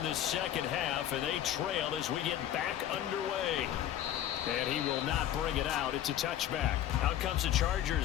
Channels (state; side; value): quieter; right; 11.5 dB